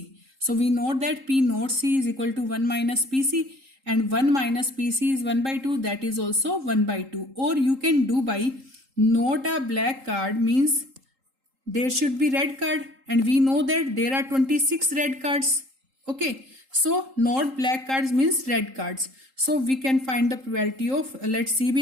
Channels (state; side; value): late; left; 3.8 ms